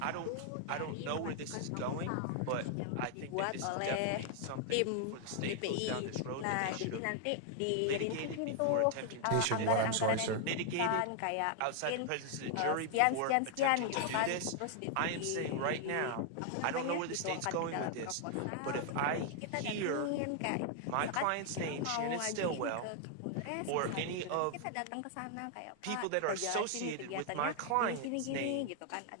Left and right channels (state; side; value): different; both; correlation 0.00